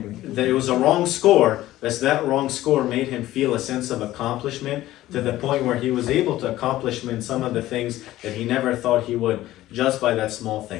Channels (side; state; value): right; quieter; 15.2 dB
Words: that it was a wrong score, that wrong score made him feel a sense of accomplishment to the point where he was able to accomplish some of the things that he never thought he would, just by that small